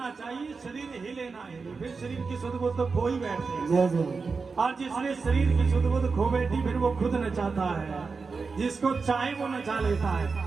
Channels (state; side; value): quieter; left; 4.7 dB